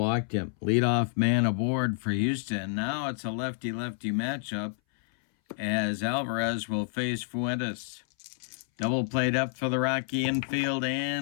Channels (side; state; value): right; silent; 59 dB below the other